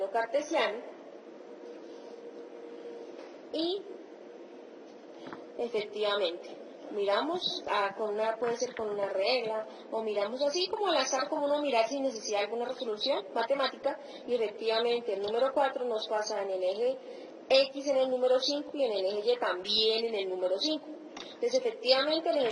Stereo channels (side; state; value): both; identical; correlation 1.00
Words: cartesiano. Y, efectivamente, miramos, puede ser con una regla, o miramos así como al azar, como uno mirar sin necesidad de alguna resolución matemática, y efectivamente el número 4 nos pasa en el eje x en el número 5 y en el eje y también en el número 5. Entonces efectivamente el